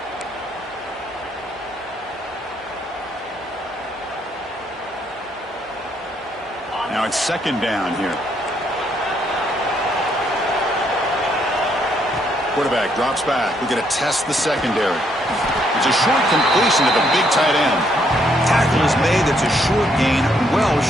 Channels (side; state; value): both; normal; correlation 0.72